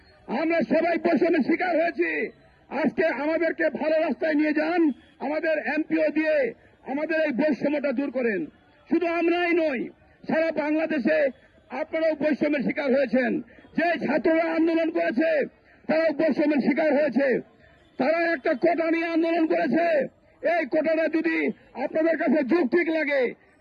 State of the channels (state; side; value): identical; both; correlation 1.00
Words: আমরা সবাই বৈষম্যের শিকার হয়েছি। আজকে আমাদেরকে ভালো রাস্তায় নিয়ে যান, আমাদের এমপিও দিয়ে আমাদের এই বৈষম্যটা দূর করেন। শুধু আমরাই নই, সারা বাংলাদেশে আপনারাও বৈষম্যের শিকার হয়েছেন। যে ছাত্ররা আন্দোলন করেছে তারাও বৈষম্যের শিকার হয়েছে। তারা একটা কোটা নিয়ে আন্দোলন করেছে, এই কোটাটা যদি আপনাদের কাছে যৌক্তিক লাগে